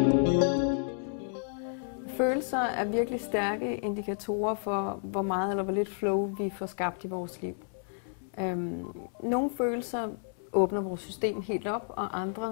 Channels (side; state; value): right; silent; 57 dB below the other